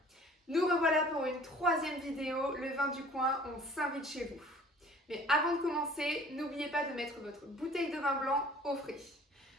Nous revoilà pour une troisième vidéo, le vin du coin, on s'invite chez vous. Mais avant de commencer, n'oubliez pas de mettre votre bouteille de vin blanc au frais.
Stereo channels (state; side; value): normal; both; correlation 0.50